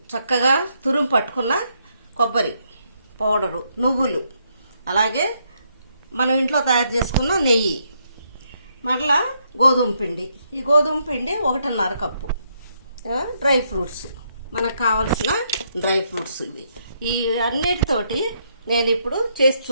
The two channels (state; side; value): inverted; both; correlation -0.75